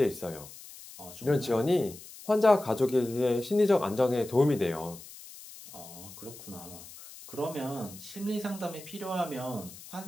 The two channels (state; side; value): noise; left; hiss, 16 dB below the sound